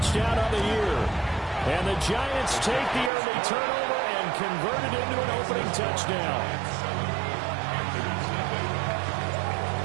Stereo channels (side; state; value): left; drops out; at 3.1 s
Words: of the year. And the Giants take the early turnover and convert it into an opening touchdown.